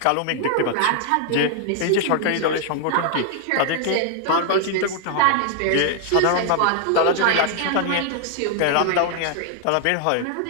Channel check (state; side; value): different; both; correlation 0.00